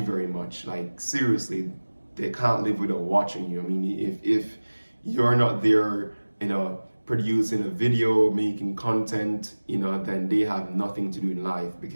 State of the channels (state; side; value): inverted; both; correlation -1.00